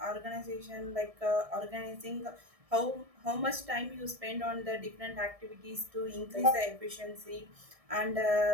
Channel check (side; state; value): left; late; 1.6 ms